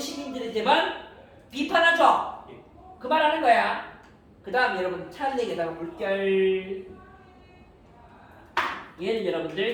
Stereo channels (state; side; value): identical; both; correlation 1.00